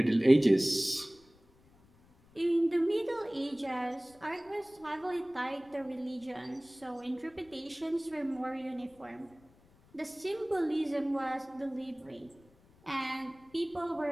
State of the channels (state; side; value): noise; left; rumble, 29 dB below the sound